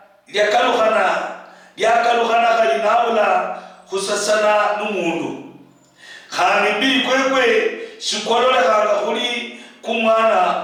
lyakaluhana kalinabula khusasana n'umundu khandi mbili kwekwe shikololehanga khuli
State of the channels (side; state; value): both; identical; correlation 1.00